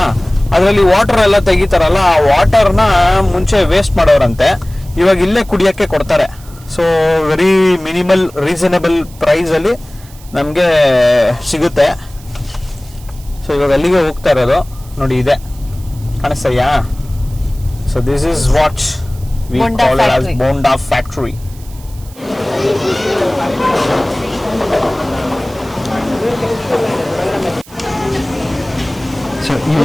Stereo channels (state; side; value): noise; right; hiss, 23 dB below the sound